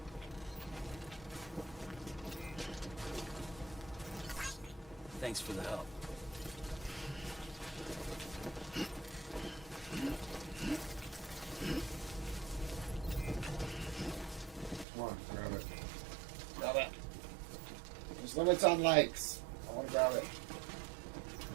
Thanks for the help. Come on, grab it. Grab it. There's limits on likes. I want to grab it.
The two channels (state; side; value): drops out; left; at 14.9 s